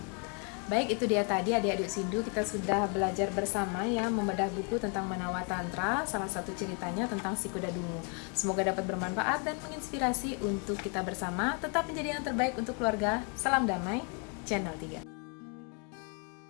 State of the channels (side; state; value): right; quieter; 37.7 dB